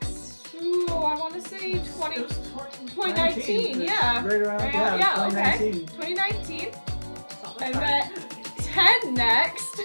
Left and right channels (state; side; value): inverted; both; correlation -1.00